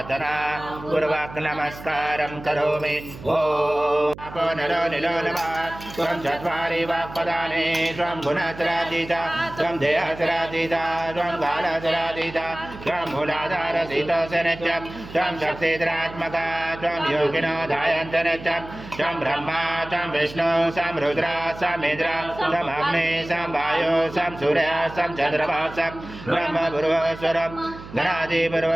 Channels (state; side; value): noise; right; hum, 15 dB below the sound